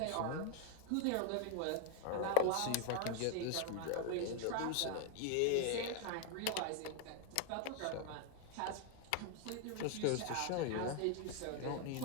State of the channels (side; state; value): both; different; correlation 0.00